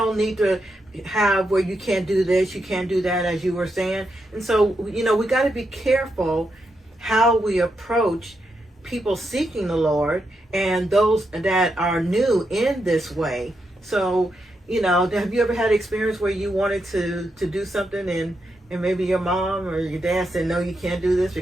need to have where you can't do this, you can't do that, as you were saying. And so, we got to be careful how we approach people seeking the Lord and those that are new in this way. So, have you ever had an experience where you wanted to do something and maybe your mom or your dad said, no, you can't do this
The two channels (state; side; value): normal; both; correlation 0.83